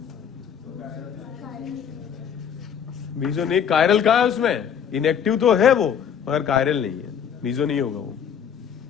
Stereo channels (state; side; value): quieter; right; 8.0 dB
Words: मीजो नहीं, कायरल कहाँ है उसमें? इनएक्टिव तो है वो, मगर कायरल नहीं है, मीजो नहीं होगा वो।